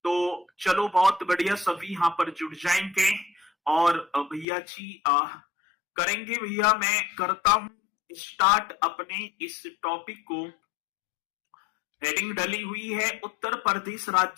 तो चलो बहुत बढ़िया, सभी यहां पर जुड़ जाएंगे और भैया जी करेंगे। भैया मैं करता हूं स्टार्ट अपने इस टॉपिक को। हेडिंग डली हुई है उत्तर प्रदेश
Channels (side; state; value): right; drops out; at 4.5 s